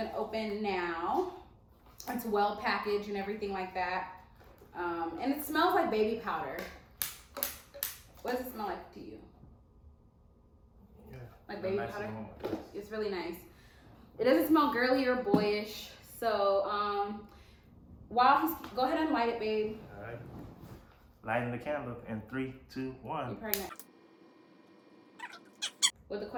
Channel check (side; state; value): both; identical; correlation 1.00